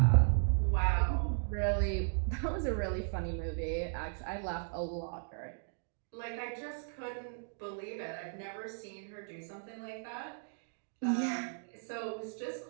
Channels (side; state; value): left; silent; digital silence